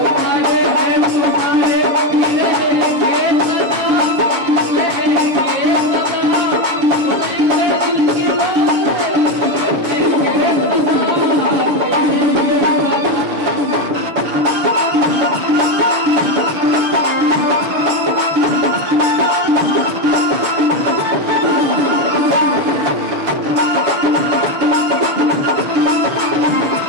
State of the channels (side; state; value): left; late; 6.5 ms